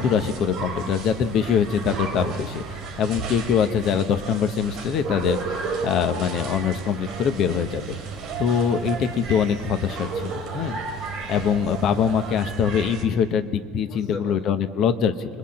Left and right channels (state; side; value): quieter; right; 5.6 dB